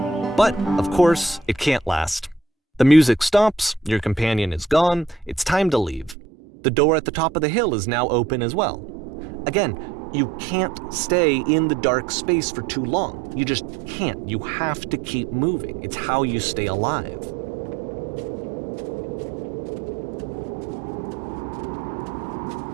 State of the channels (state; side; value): drops out; left; at 6.2 s